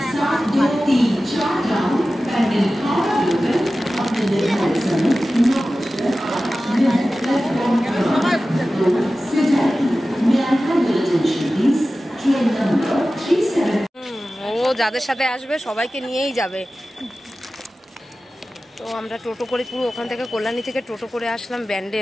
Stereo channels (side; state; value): both; normal; correlation 0.95